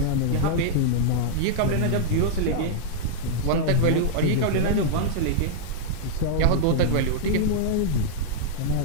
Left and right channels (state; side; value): different; both; correlation -0.02